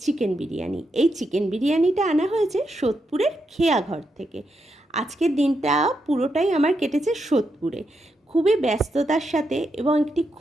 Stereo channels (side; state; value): both; normal; correlation 0.83